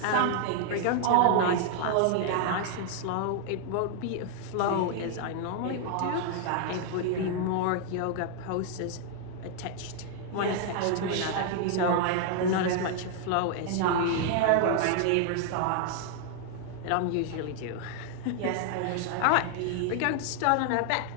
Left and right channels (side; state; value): both; different; correlation 0.00